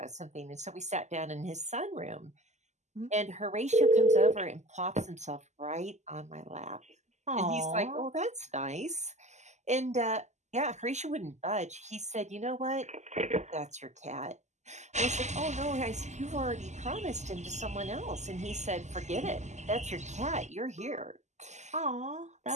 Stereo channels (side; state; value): left; late; 0.33 ms